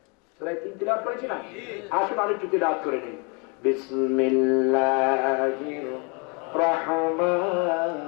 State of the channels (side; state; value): right; quieter; 33.4 dB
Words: সূরা 3 তিলাওয়াত করেছি না? আসুন আরেকটু তিলাওয়াত করে নেই। বিসমিল্লাহির রহমানির